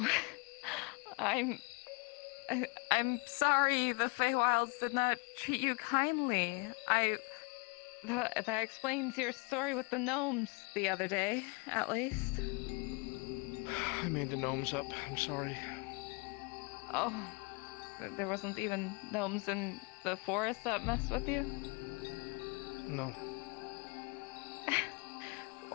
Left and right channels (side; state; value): right; quieter; 30.8 dB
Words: I'm sorry the Feywilds did not treat you kindly. That explains your story with the gnomes the other day, at least. I made the gnomes up. I'm sorry. Oh, there wasn't even gnomes in the forest that messed with you? No.